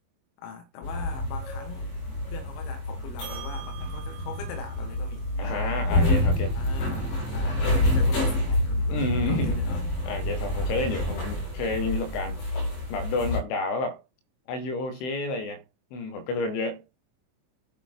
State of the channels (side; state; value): right; late; 23 ms